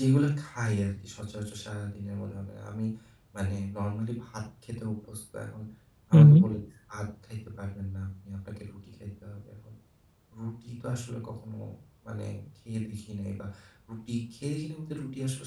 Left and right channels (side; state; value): both; identical; correlation 1.00